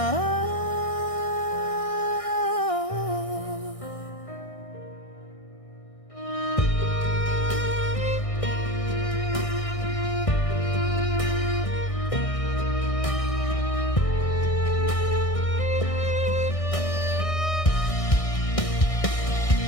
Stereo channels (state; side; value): late; right; 1.6 ms